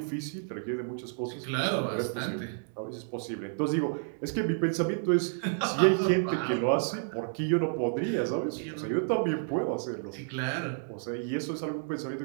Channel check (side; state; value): left; silent; digital silence